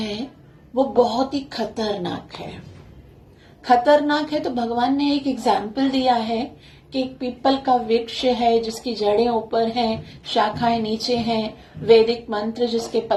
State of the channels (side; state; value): both; identical; correlation 1.00